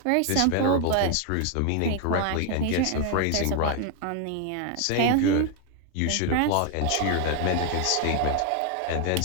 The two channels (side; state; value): both; different; correlation 0.01